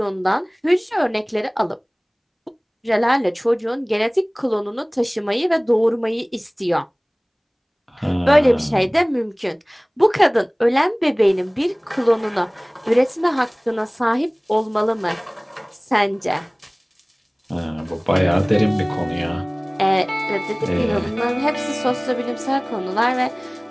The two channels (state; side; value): identical; both; correlation 1.00